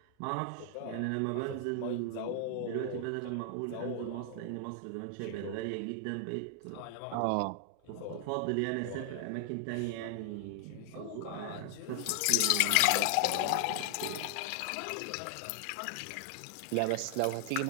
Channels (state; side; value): different; both; correlation 0.00